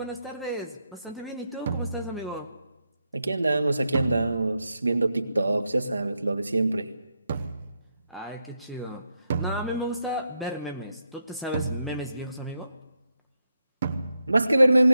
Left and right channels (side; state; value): both; inverted; correlation -0.83